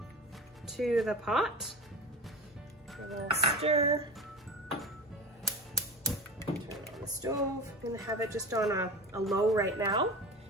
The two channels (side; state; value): both; normal; correlation 0.30